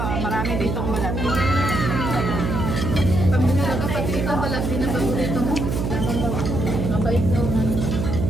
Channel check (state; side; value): noise; right; hum, 1 dB below the sound